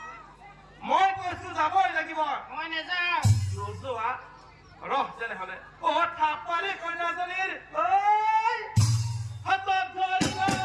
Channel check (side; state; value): both; identical; correlation 1.00